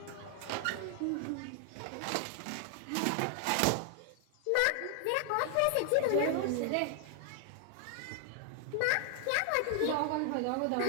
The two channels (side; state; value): both; different; correlation 0.00